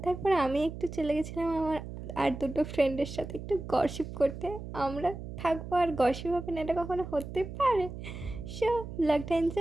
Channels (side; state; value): right; noise; hum, 10 dB below the sound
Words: তারপরে আমি একটু চলে গেছিলাম আমার আর দুটো ফ্রেন্ডের সাথে একটু গসিপ করতে। আমরা থাকবো আর গসিপ হবে না, এটা কখনো হতে পারে? সো ব্লগটা